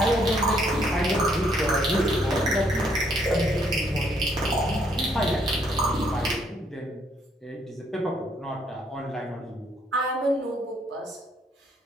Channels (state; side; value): normal; both; correlation 0.69